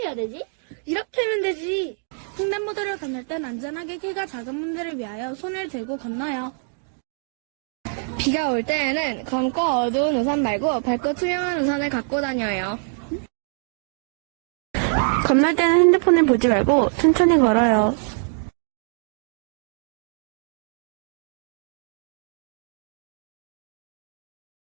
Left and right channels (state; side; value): silent; left; 58 dB below the other